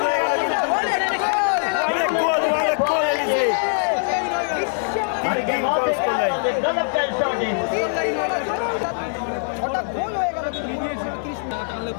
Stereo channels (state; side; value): silent; right; digital silence